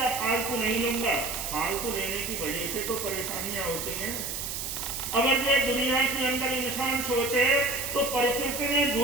फालतू नहीं लूंगा। फालतू लेने की वजह से तो परेशानियां होती हैं। अगर ये दुनिया के अंदर इंसान सोचे तो प्रकृति ने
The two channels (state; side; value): noise; right; hiss, 4 dB below the sound